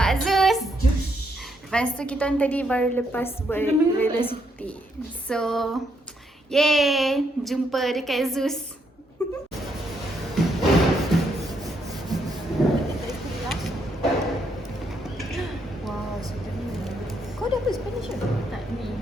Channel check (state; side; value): normal; both; correlation 0.75